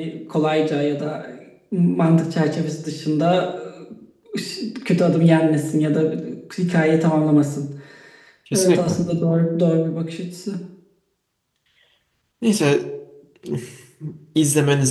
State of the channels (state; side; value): identical; both; correlation 1.00